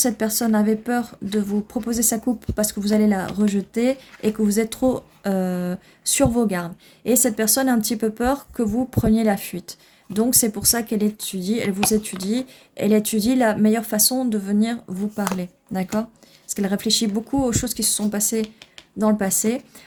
personne avait peur de vous proposer sa coupe parce que vous allez la rejeter et que vous êtes trop sur vos gardes. Et cette personne a un petit peu peur que vous preniez la fuite. Donc c'est pour ça qu'elle étudie, elle étudie la meilleure façon de venir vous parler. D'accord? Parce qu'elle réfléchit beaucoup aux choses qui se sont passées dans le passé.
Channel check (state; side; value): identical; both; correlation 1.00